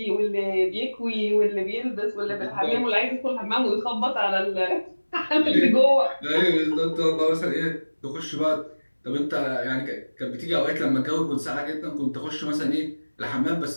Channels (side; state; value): both; inverted; correlation -1.00